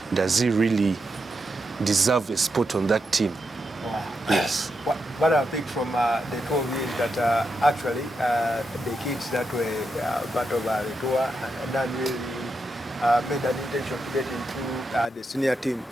does he really deserve a spot on that team? Yes. What I picked from the two of you is that actually the kids that were part of the tour done really made an intention to get into the senior team.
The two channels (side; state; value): both; normal; correlation 0.85